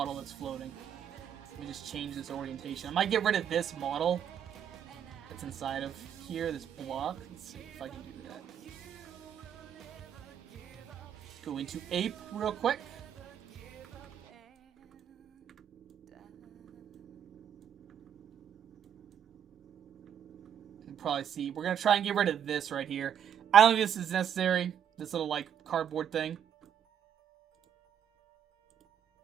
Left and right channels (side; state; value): left; quieter; 9.0 dB